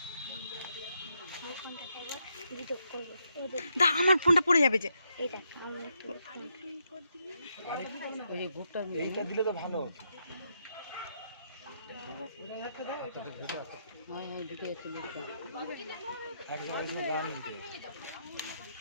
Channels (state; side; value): inverted; both; correlation -0.79